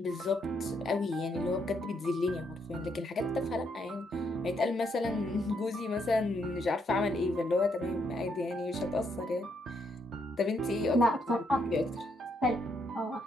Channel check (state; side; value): normal; both; correlation 0.75